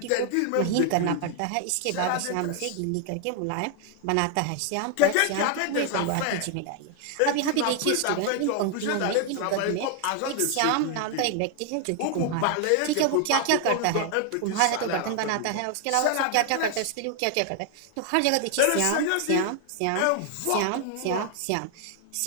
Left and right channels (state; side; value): different; both; correlation 0.00